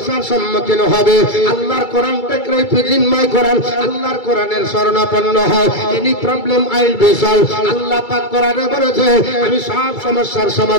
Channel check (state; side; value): late; right; 2.3 ms